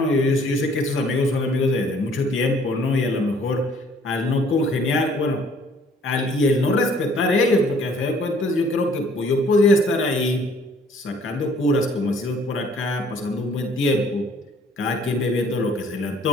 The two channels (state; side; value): normal; both; correlation 0.58